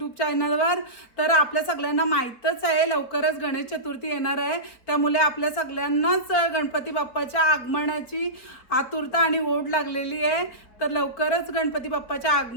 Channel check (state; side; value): late; right; 4.6 ms